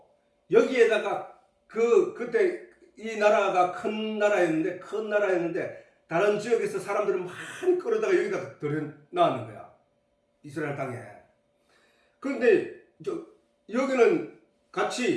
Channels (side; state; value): both; identical; correlation 1.00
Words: 여기에다가 그때 이 나라가 큰 나라였는데 다른 지역에서 사람들을 많이 끌어다가 여기다 들여놨는 거야. 이스라엘 땅에. 그런데 여기는